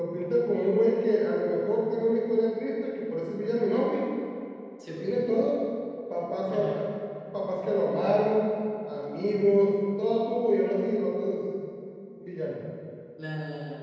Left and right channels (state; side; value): identical; both; correlation 1.00